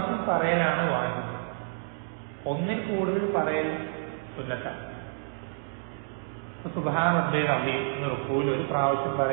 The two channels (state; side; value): silent; left; digital silence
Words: പറയലാണ് വാജിബ്, ഒന്നിൽ കൂടുതൽ പറയൽ സുന്നത്താണ്. സുബ്ഹാന റബ്ബിയൽ അസീം എന്ന റുക്കൂയിൽ ഒരു പ്രാവശ്യം